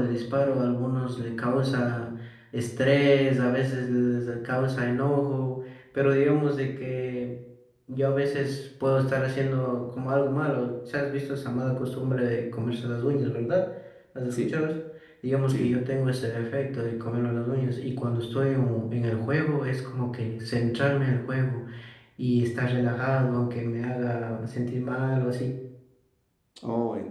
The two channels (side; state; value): both; identical; correlation 1.00